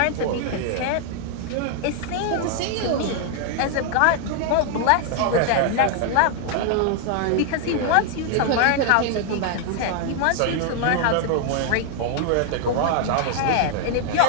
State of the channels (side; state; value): both; different; correlation 0.00